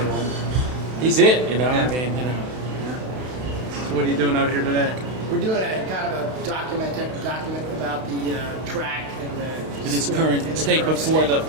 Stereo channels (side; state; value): left; late; 32 ms